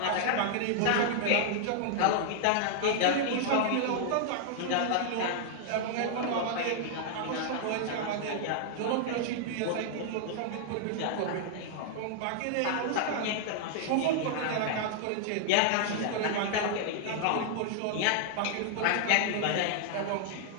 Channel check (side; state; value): both; different; correlation -0.01